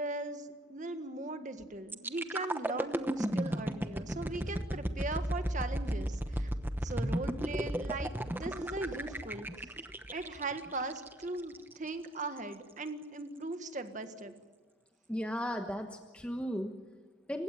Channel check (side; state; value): both; normal; correlation 0.67